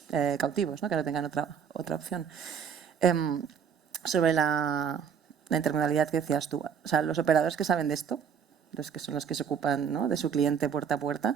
cautivos, ¿no?, que no tengan otra opción. Sobre la intermodalidad que decías tú, o sea, los operadores que saben de esto, los que son los que se ocupan, ¿no?, de su cliente puerta a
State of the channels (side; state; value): left; quieter; 7.4 dB